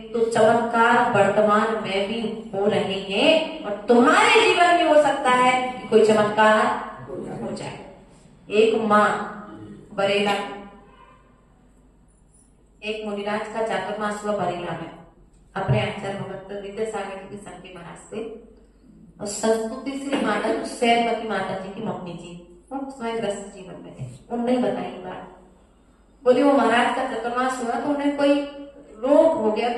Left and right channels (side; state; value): both; identical; correlation 1.00